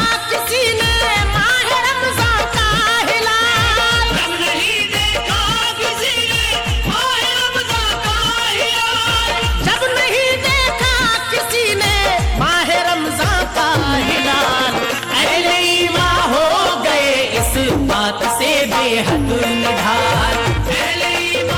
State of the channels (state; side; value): identical; both; correlation 1.00